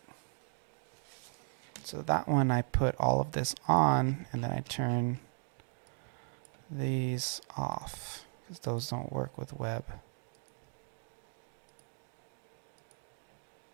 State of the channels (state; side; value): silent; left; 53 dB below the other